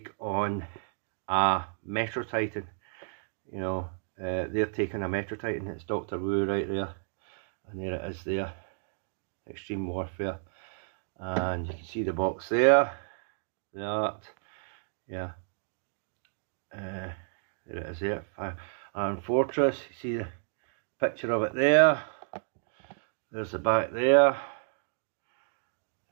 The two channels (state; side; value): silent; left; digital silence